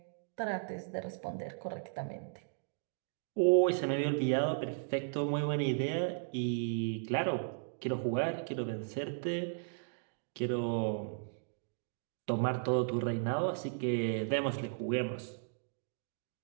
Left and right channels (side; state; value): left; silent; digital silence